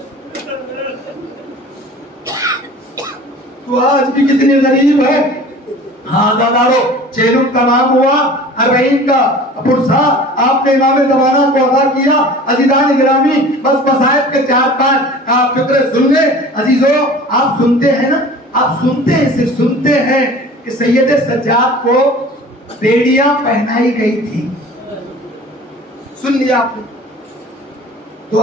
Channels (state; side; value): normal; both; correlation 0.43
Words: तो आज भी कितनी गरीब है। हाँ दादारो, चेलुम तमाम हुआ, अरबईन का पुरसा आपने इमाम ज़माना को अदा किया। अज़ीज़ान गिरामी, बस मसाइब के 4-5 फिक्रे सुन ले। अजीजों, आप सुनते हैं ना, आप सुनते हैं, सिर्फ सुनते हैं कि सैयद सज्जाद को बेड़ियां पहनाई गई थी। सुन लिया आपने, तो